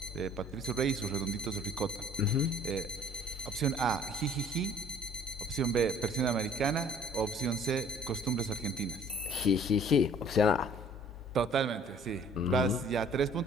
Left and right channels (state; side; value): normal; both; correlation 0.54